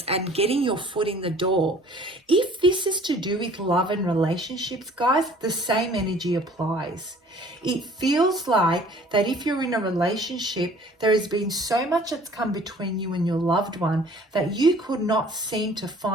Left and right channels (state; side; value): normal; both; correlation 0.52